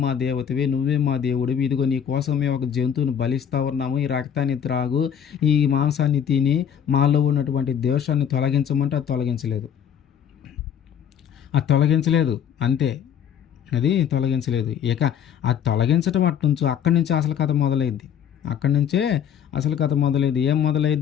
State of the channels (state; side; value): quieter; right; 8.8 dB